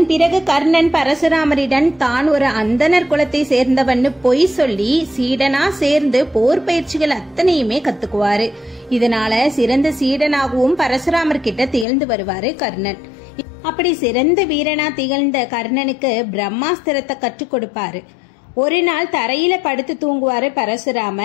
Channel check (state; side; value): drops out; right; at 11.9 s